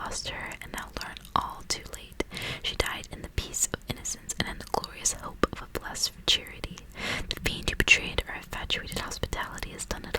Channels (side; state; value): both; identical; correlation 1.00